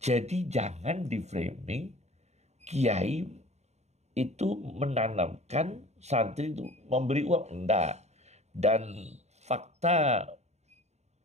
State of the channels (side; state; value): left; late; 0.32 ms